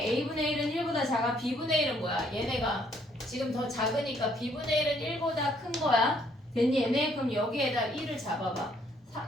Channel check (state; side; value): normal; both; correlation 0.67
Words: A분의 1은 1보다 작아. B분의 1은 뭐야? 얘네가 지금 더 작으니까 B분의 1은 1보다 큰 거야. 됐니? 얘네? 그럼 여기에다 1을 잡아봐.